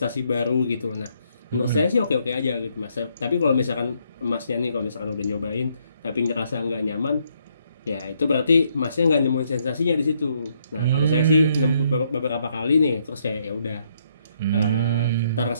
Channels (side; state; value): both; inverted; correlation -0.72